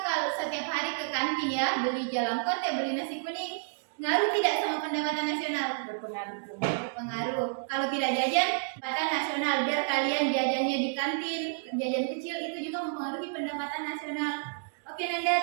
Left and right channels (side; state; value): left; silent; digital silence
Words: kalau setiap hari ke kantin ya, beli jalan kote, beli nasi kuning, ngaruh tidak sama pendapatan nasional? Berpengaruh. Berpengaruh. Kalau tidak jajan, pendapatan nasional. Biar kalian jajannya di kantin, jajan kecil, itu juga mempengaruhi pendapatan nasional. Oke